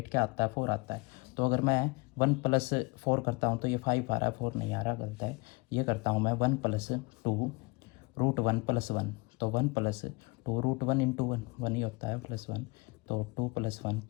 क्या आता है, 4 आता है। तो अगर मैं 1 + 4 करता हूँ तो ये 5 आ रहा है, 4 नहीं आ रहा, गलत है। ये करता हूँ मैं 1 + 2 √1 + 1, तो 1 + 2 √1 × 1 1 ही होता है, +1, तो 2 + 1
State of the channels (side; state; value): right; quieter; 26.4 dB